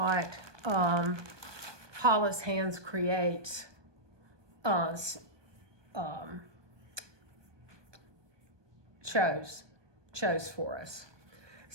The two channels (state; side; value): late; left; 1.2 ms